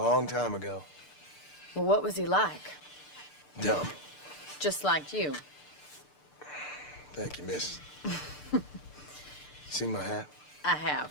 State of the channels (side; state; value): right; late; 6.7 ms